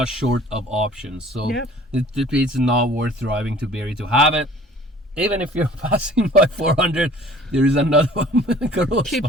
short of options. So Yep. it's not worth driving to Barrie to have it. Even if you're passing by 400, there is another one. Keep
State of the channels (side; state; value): both; normal; correlation 0.50